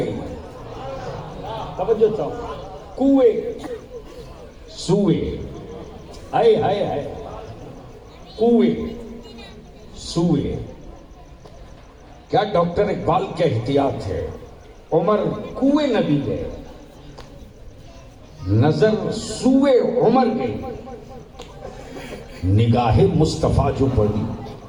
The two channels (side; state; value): both; identical; correlation 1.00